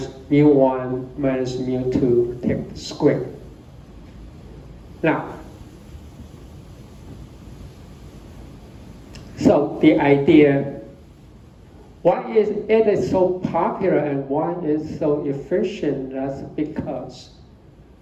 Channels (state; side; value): identical; both; correlation 1.00